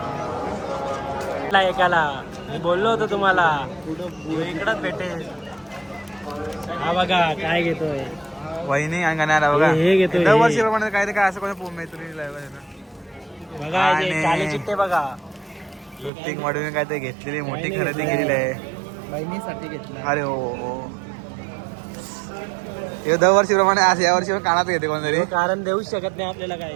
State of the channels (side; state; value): left; drops out; at 16.1 s